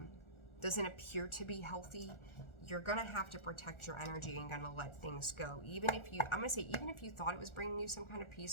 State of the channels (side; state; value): right; late; 1.4 ms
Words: doesn't appear to be healthy. You're going to have to protect your energy and going to let things go. Even if you, I'm going to say, even if you thought it was bringing you some kind of